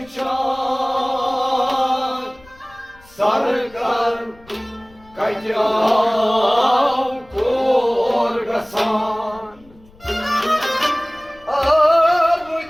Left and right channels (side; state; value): left; noise; rumble, 26 dB below the sound